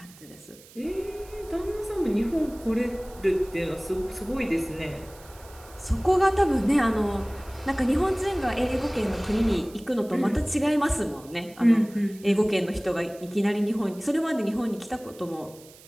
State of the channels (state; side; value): noise; right; hiss, 23 dB below the sound